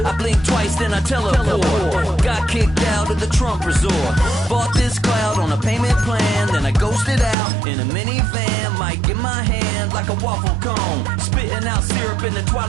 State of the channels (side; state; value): left; drops out; at 7.4 s